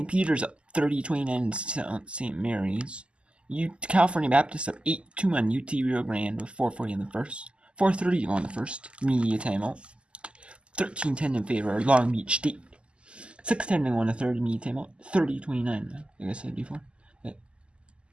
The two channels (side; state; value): left; late; 0.052 ms